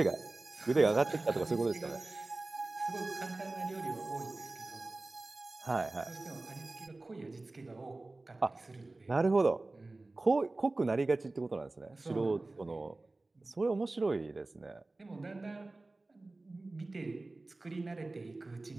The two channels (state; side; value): quieter; left; 3.1 dB